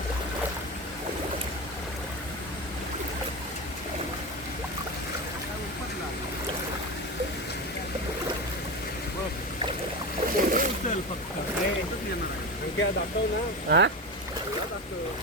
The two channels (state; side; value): normal; both; correlation 0.21